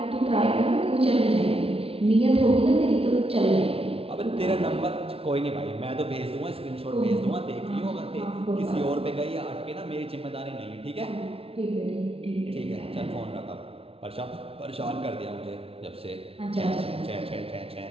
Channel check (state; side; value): late; left; 0.27 ms